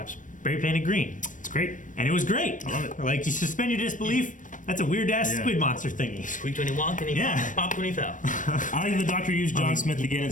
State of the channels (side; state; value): right; late; 0.37 ms